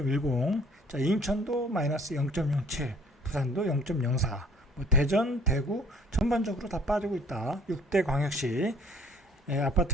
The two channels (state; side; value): normal; both; correlation 0.56